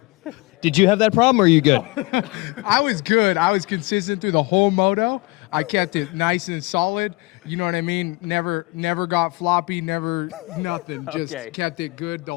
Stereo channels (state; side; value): quieter; right; 24.4 dB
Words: Did you have that problem, or are you good? I was good. I was consistent through the whole moto. I kept it nice and solid. You know what I mean? Never got floppy, never nothing. Just Okay. kept it good the